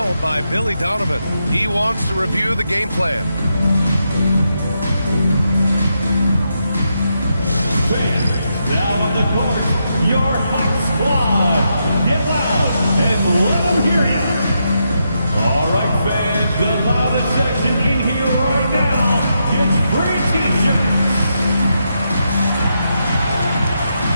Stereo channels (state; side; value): inverted; both; correlation -0.83